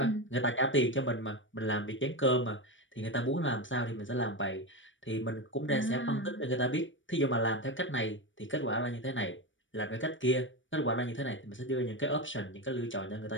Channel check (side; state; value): right; late; 0.56 ms